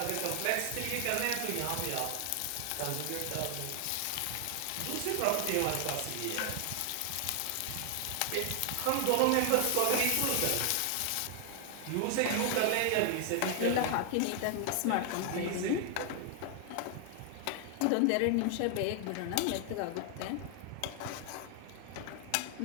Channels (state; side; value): different; both; correlation 0.00